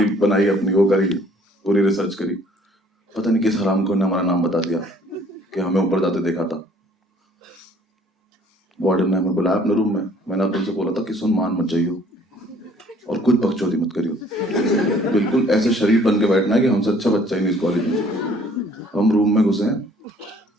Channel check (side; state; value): both; normal; correlation 0.58